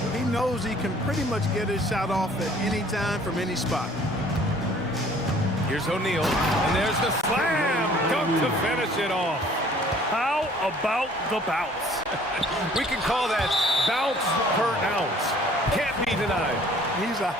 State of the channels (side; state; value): both; normal; correlation 0.55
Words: he knows he can pretty much get his shot off at any time from any spot. Here's O'Neal, and there's the slam dunk to finish it off. How about the bounce? We can call that bounce per ounce. Can't be denied. He's a